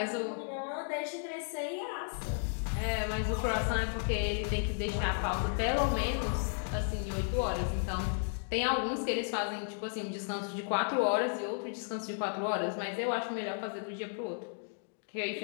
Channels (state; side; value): silent; right; digital silence